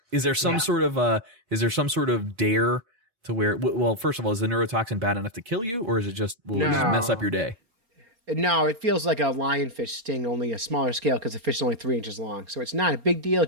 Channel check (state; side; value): late; left; 4.3 ms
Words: Is there some sort of dare to where, well, first of all, is the neurotoxin bad enough to kill you, or is it just, will it just mess up your day? No, it feels like a lionfish sting, only a smaller scale, because the fish is only 3 inches long. So it's not a big deal. It